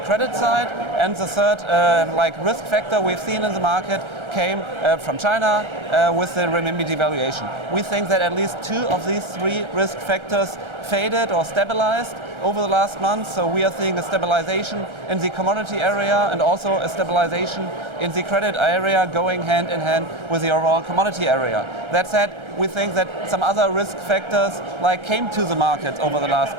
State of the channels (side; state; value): left; late; 1.3 ms